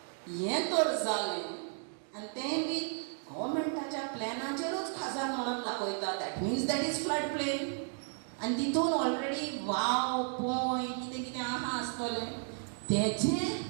हें तर जालें आनी तें बी गव्हर्मेंटाच्या प्लॅनाचेरूच खजान म्हणून दाखयता. That means that is flood plain. आनी तितून ऑलरेडी वाव पोंय कितें कितें आहा आसतलें. तेजें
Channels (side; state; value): left; silent; 55 dB below the other